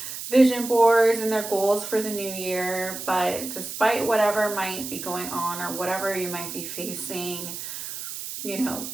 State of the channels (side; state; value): right; noise; hiss, 8 dB below the sound